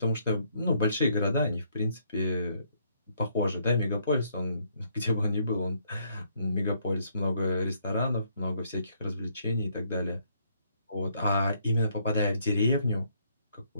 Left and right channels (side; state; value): both; inverted; correlation -0.70